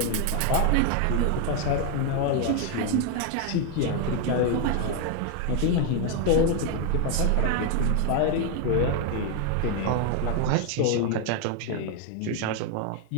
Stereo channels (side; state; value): both; different; correlation 0.01